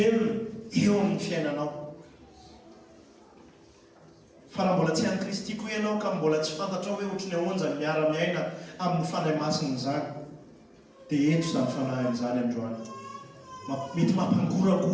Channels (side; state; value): both; identical; correlation 1.00